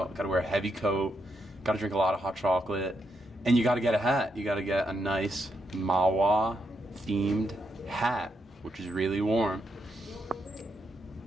Gotta wear a heavy coat. Gotta drink a lot of hot chocolate. And you gotta get a hat. You gotta get a nice Mahwah themed hat, which is really warm.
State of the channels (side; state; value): both; normal; correlation 0.80